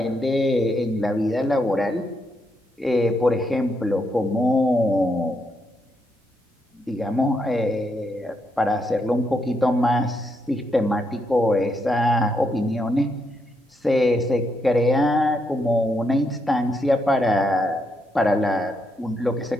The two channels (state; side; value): normal; both; correlation 0.79